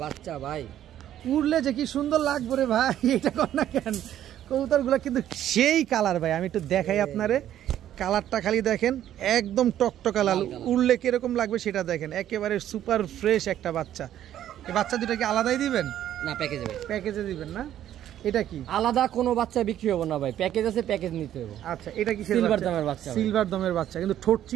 বাচ্চা ভাই, উড়লে যে কি সুন্দর লাগবে রে ভাই, এটা কর না কেন? কবুতরগুলো কিন্তু সেই কালার ভাই, আমি একটু দেখাই আপনারে। কালারটা খালি দেখেন, একদম টকটকা লাল। উড়লে কিরকম লাগবে সেটা দেখেন, একেবারে সুপার ফ্রেশ একটা বাচ্চা। এই বাচ্চা দুটো কি আলাদাই দিবেন না? প্যাকেজে দিবেন না? এটা কি আলাদা কোনো বাচ্চা বিক্রি হবে না ভাই, প্যাকেজ আছে, প্যাকেজ নিতে হবে। আচ্ছা, এটা কি সিলভার দামের বাচ্চা? সিলভার দামের বাচ্চা, কিন্তু ঠোঁট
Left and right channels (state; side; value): quieter; left; 11.5 dB